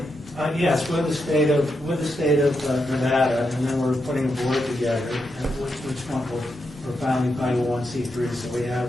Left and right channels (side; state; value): both; normal; correlation 0.84